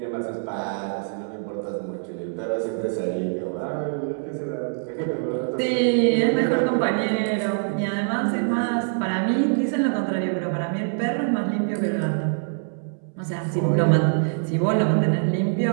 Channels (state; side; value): silent; left; 62 dB below the other